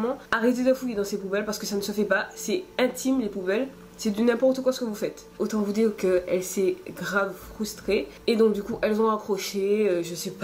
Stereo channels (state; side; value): identical; both; correlation 1.00